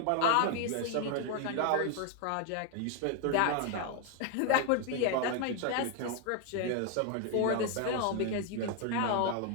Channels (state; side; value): different; both; correlation 0.01